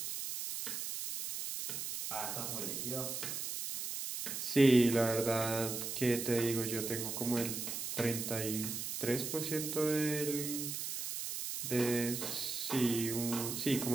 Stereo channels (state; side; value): noise; right; hiss, 4 dB below the sound